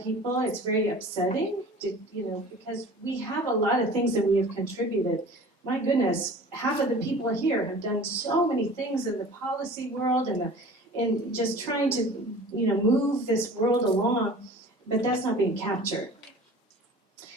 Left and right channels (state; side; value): normal; both; correlation 0.42